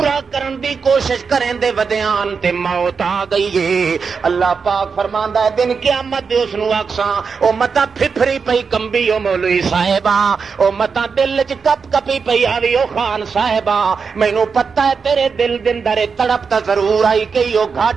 کرن دی کوشش کریں دے ودیان تے موت آ گئی ہے. اللہ پاک فرماندا ہے دن قیامت دے اس نو اکساں او متا پھپھری پئی کمبی او مولوی صاحبہ او متا دل وچ کپ کپی پئی آوی او خان صاحبہ مینوں پتہ ہے تیرے دل دے اندر تڑپ تا ضرور آئی کہ او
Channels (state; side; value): quieter; left; 5.5 dB